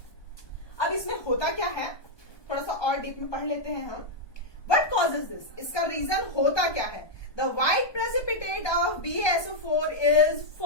अब इसमें होता क्या है, थोड़ा सा और डीप में पढ़ लेते हैं हम। What causes this? इसका रीजन होता क्या है। The white precipitate of BaSO4 is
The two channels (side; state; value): right; late; 1.2 ms